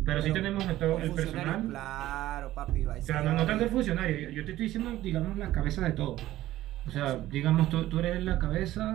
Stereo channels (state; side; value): quieter; left; 14.9 dB